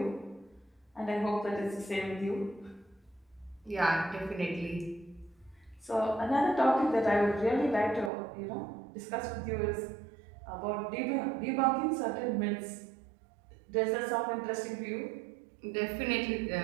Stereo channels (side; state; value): left; drops out; at 8.1 s